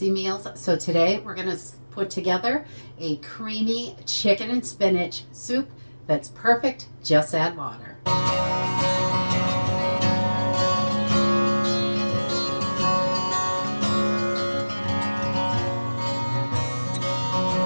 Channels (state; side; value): inverted; both; correlation -1.00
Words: meals, so today we're going to put together a creamy chicken and spinach soup that's perfect. Just add water.